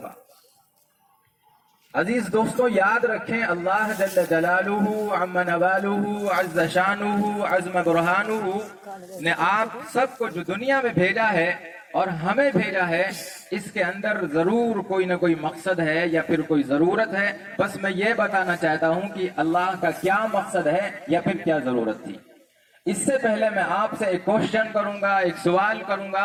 گا. عزیز دوستو، یاد رکھیں، اللہ جل جلالہ عم نوالہ عز شانہ عظم برہانہ نے آپ سب کو جو دنیا میں بھیجا ہے اور ہمیں بھیجا ہے، اس کے اندر ضرور کوئی نہ کوئی مقصد ہے یا پھر کوئی ضرورت ہے. بس میں یہ بتانا چاہتا ہوں کہ اللہ کا کیا مقصد ہے یا پھر کیا ضرورت تھی. اس سے پہلے میں آپ سے ایک کوشچن کروں گا، ایک سوال کروں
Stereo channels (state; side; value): identical; both; correlation 1.00